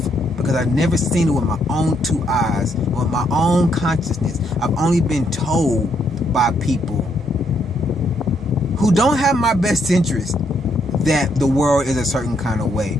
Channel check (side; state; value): both; normal; correlation 0.74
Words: because I've never seen it with my own two eyes, with my own consciousness. I've only been told by people who don't have my best interest that the world is a certain kind of way.